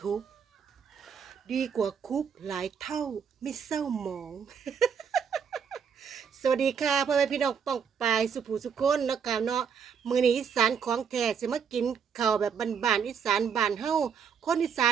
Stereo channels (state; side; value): quieter; left; 6.9 dB